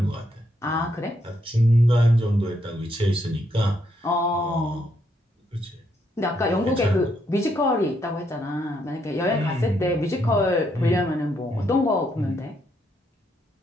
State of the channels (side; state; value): both; normal; correlation 0.76